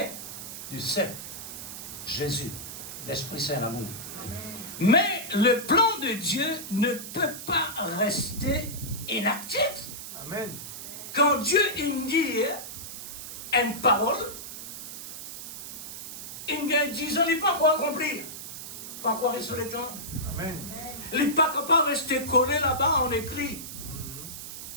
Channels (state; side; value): noise; right; hiss, 9 dB below the sound